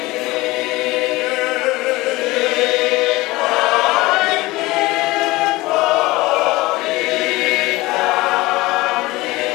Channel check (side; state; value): right; quieter; 20.2 dB